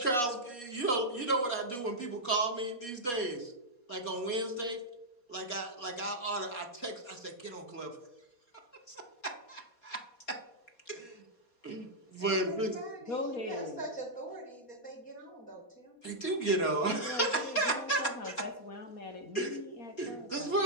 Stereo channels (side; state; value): right; late; 4.2 ms